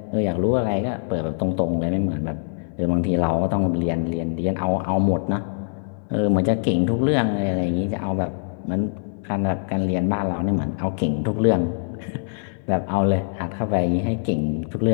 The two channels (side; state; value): right; silent; 62 dB below the other